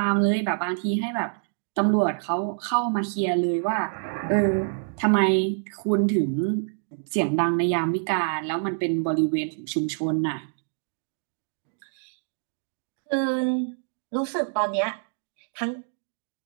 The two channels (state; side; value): silent; left; 61 dB below the other